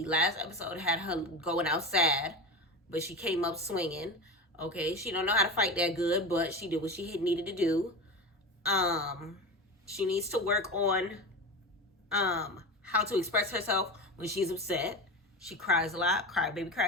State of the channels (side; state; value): both; normal; correlation 0.25